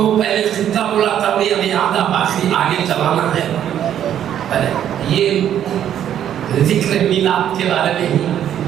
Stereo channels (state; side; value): quieter; left; 10.3 dB